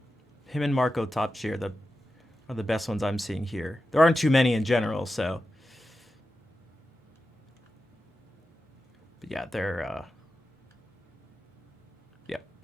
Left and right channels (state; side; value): normal; both; correlation 0.91